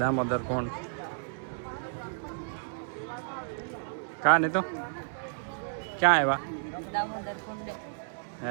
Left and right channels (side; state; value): left; silent; 57 dB below the other